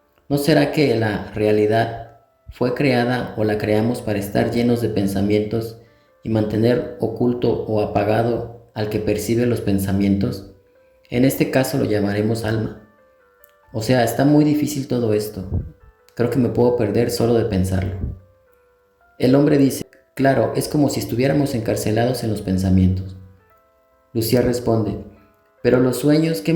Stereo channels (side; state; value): both; identical; correlation 1.00